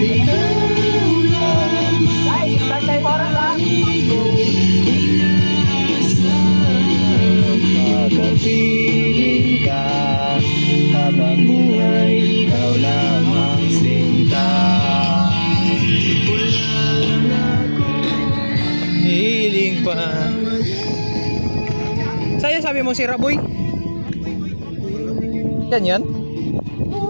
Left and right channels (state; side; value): inverted; both; correlation -1.00